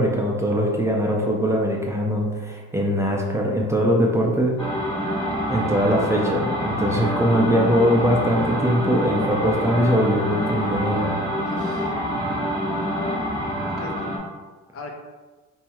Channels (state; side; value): normal; both; correlation 0.53